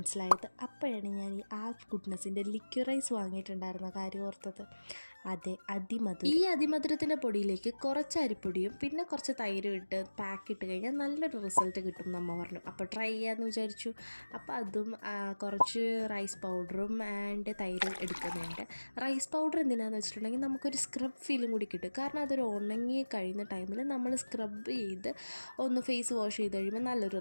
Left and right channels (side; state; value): both; inverted; correlation -1.00